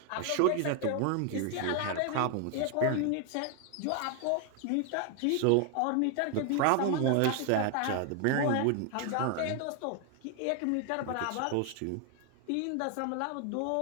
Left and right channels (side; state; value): both; different; correlation 0.00